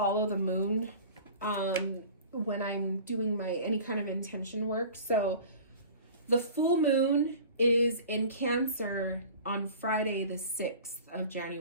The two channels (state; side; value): inverted; both; correlation -0.41